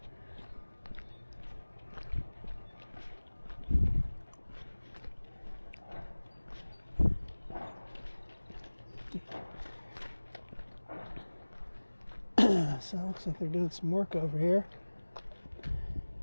So it looks like they're doing some work over here.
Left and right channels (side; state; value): both; inverted; correlation -1.00